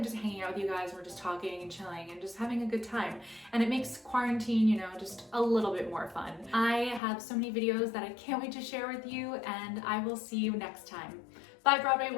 just hanging out with you guys. We're just talking and chilling and just having a good time. And it makes quarantine, you know, just a little bit more fun. I have so many videos that I can't wait to share with you, and I will see you next time. Bye, Broadway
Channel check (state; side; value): drops out; right; at 7.0 s